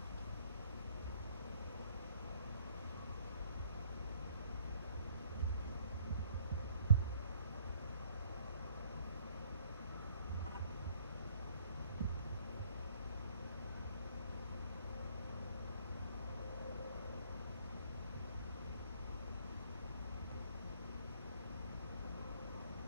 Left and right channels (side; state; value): both; inverted; correlation -0.60